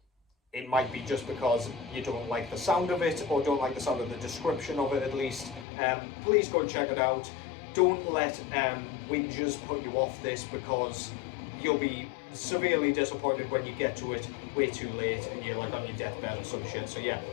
it might be just because you don't like the sound of it, or don't like the sound of the description of it at least. Please go and check it out. Don't let whingers put you off this, because you'll be severely disappointed when you get to it way too late and you're like on your deathbed or some shit. So yeah,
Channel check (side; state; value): right; drops out; at 5.7 s